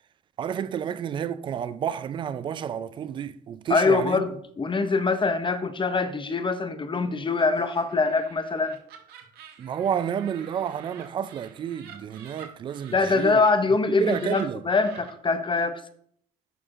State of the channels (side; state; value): both; normal; correlation 0.46